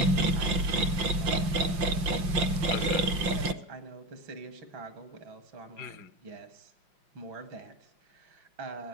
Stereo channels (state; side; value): late; left; 5.8 ms